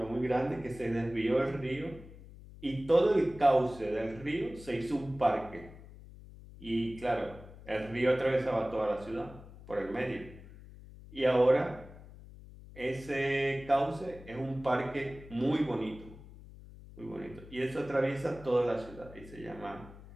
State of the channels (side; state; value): left; noise; hum, 17 dB below the sound